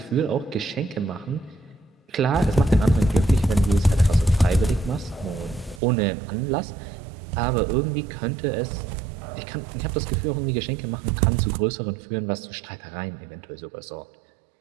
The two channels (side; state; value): left; drops out; at 5.8 s